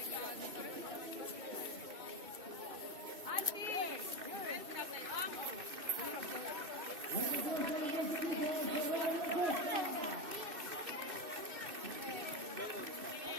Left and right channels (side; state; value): left; late; 2.6 ms